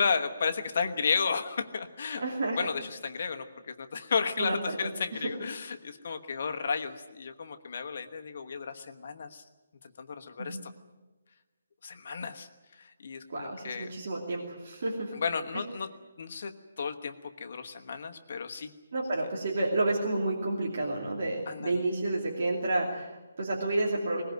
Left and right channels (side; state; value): both; inverted; correlation -0.83